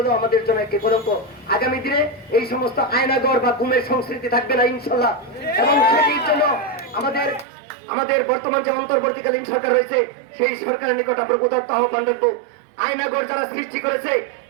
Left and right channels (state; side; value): drops out; left; at 7.5 s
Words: আমাদের জন্য একটি কলঙ্ক। আগামী দিনে এই সমস্ত আয়নাগর বা গুমের সংস্কৃতি থাকবে না ইনশাল্লাহ। এবং সেটির জন্য আমাদের বর্তমান যে অন্তর্বর্তীকালীন সরকার রয়েছে, সেই সরকারের নিকট আমরা উদাত্ত আহ্বান রাখবো। আয়নাগর যারা সৃষ্টি করেছে,